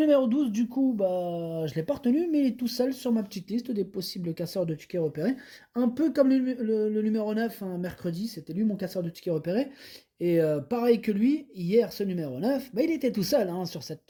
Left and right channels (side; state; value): both; identical; correlation 1.00